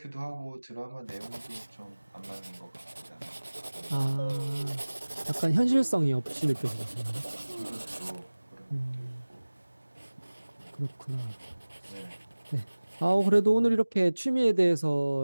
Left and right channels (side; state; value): both; inverted; correlation -1.00